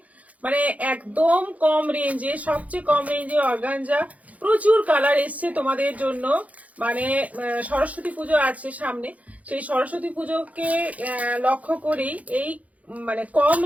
মানে একদম কম রেঞ্জে, সবচেয়ে কম রেঞ্জে অর্গানজা। প্রচুর কালার এসছে তোমাদের জন্য। মানে সরস্বতী পুজো আছে সামনে, সেই সরস্বতী পুজোকে লক্ষ্য করেই এই মানে কম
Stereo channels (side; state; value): left; late; 0.070 ms